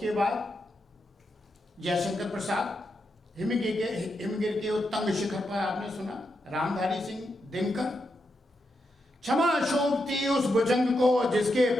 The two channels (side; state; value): both; normal; correlation 0.84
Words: बाद जयशंकर प्रसाद, हिमगिर के उत्तंग शिखर पर आपने सुना, रामधारी सिंह दिनकर, क्षमा शोभती उस भुजंग को जिसके